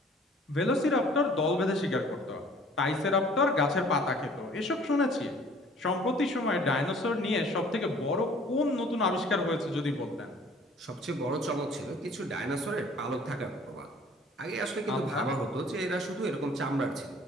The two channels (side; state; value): both; normal; correlation 0.53